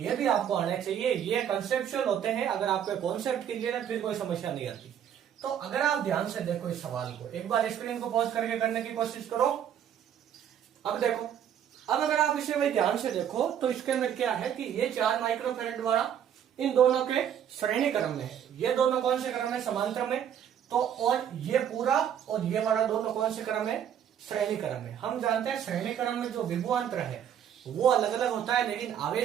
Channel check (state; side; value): quieter; left; 9.3 dB